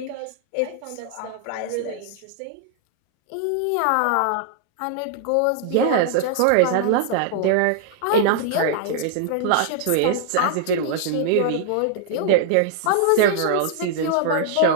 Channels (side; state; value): both; different; correlation -0.01